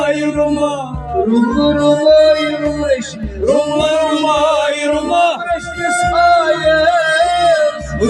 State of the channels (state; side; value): identical; both; correlation 1.00